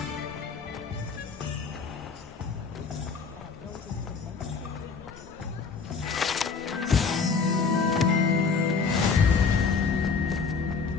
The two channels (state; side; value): quieter; right; 5.0 dB